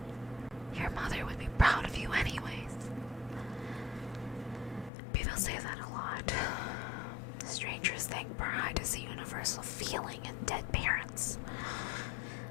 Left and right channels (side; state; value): right; drops out; at 4.9 s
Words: Your mother would be proud of you anyways. People say that a lot. Strangers think pride is a universal feeling in dead parents.